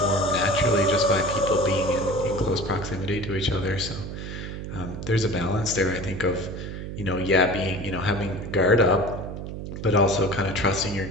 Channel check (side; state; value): right; noise; hum, 8 dB below the sound